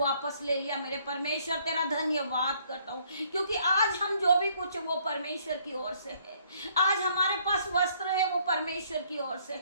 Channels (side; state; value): both; inverted; correlation -0.64